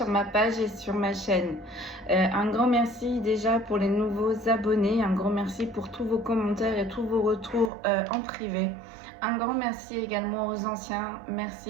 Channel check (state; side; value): drops out; left; at 7.7 s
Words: ma page et sur ma chaîne. Un grand merci déjà pour les nouveaux abonnés, un grand merci pour tous vos commentaires et tous vos retours en privé. Un grand merci également aux anciens,